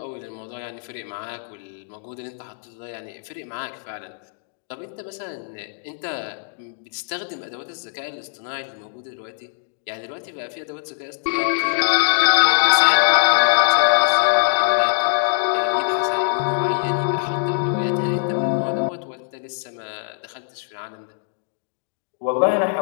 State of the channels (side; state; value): right; silent; digital silence